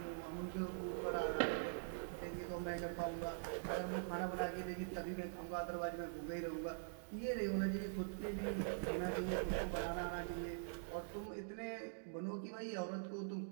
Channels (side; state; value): left; silent; digital silence